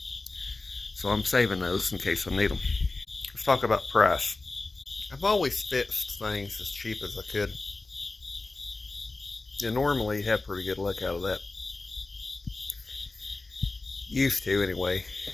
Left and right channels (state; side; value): quieter; right; 3.3 dB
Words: So I'm saving those in case I need them. Let's talk about price. I've always fixed things as cheap as I could. You normally have pretty good luck out of that. Used to anyway.